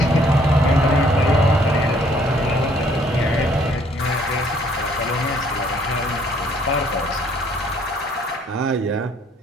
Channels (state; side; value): normal; both; correlation 0.63